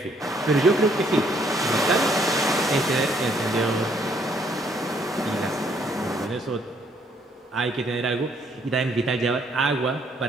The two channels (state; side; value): normal; both; correlation 0.67